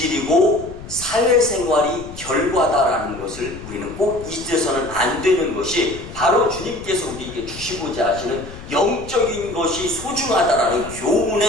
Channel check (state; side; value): noise; left; rumble, 14 dB below the sound